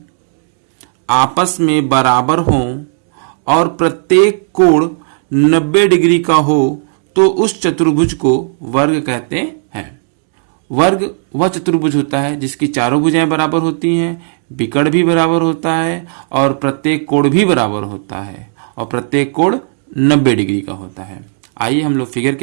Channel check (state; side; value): silent; left; digital silence